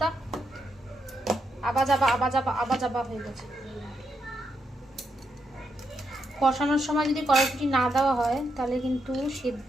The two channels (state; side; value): normal; both; correlation 0.82